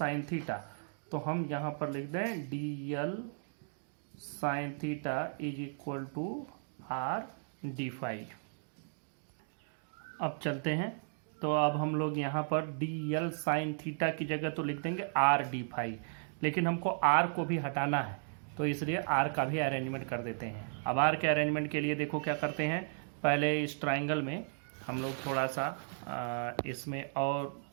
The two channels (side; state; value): left; silent; digital silence